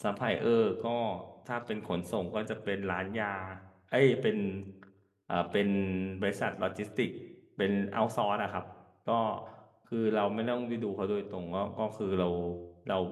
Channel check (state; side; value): identical; both; correlation 1.00